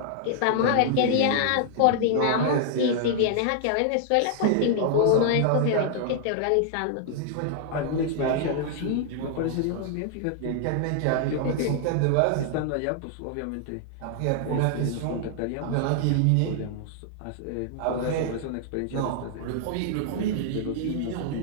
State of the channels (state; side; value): different; both; correlation 0.00